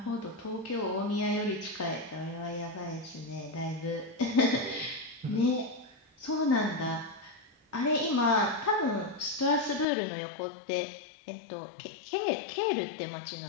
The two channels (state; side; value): drops out; right; at 9.9 s